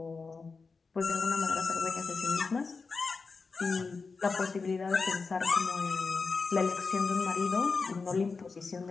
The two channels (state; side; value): quieter; right; 4.5 dB